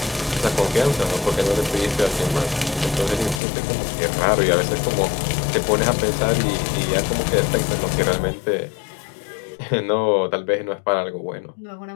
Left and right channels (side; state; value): right; drops out; at 3.4 s